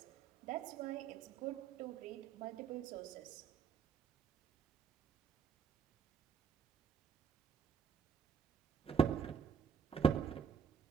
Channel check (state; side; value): quieter; left; 6.7 dB